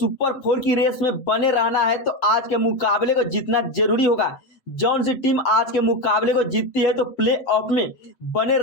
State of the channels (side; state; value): right; late; 7.7 ms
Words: फोर की रेस में बने रहना है तो आज के मुकाबले को जीतना जरूरी होगा। जौन सी टीम आज के मुकाबले को जीतती है तो प्ले ऑफ में बने